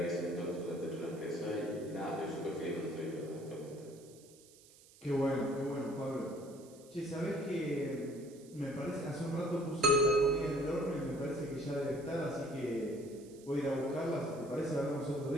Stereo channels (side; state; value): right; noise; hiss, 23 dB below the sound